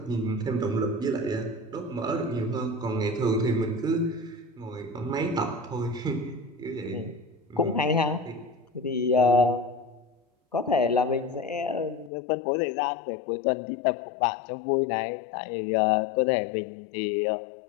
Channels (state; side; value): drops out; right; at 12.1 s